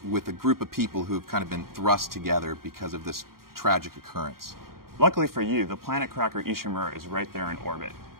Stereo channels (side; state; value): left; late; 0.93 ms